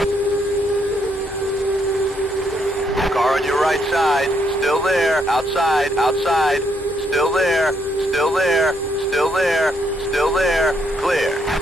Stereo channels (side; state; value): both; normal; correlation 0.74